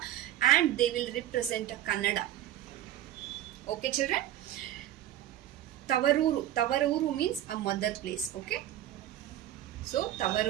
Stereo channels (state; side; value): quieter; left; 12.5 dB